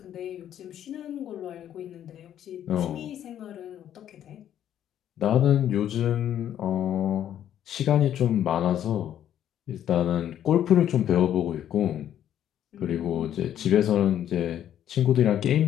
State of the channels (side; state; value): right; quieter; 10.6 dB